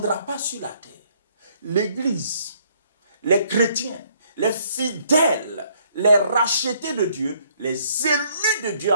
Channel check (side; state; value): both; inverted; correlation -0.65